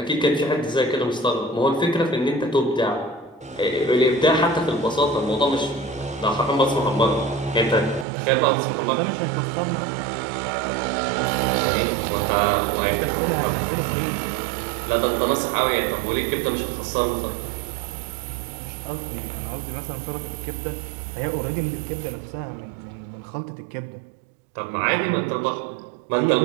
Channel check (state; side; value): drops out; left; at 8.1 s